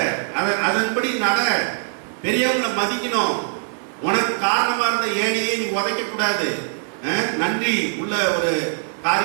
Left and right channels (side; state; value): left; silent; 61 dB below the other